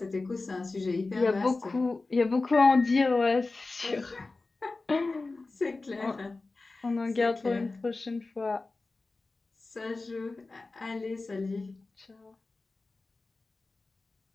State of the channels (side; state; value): right; quieter; 3.5 dB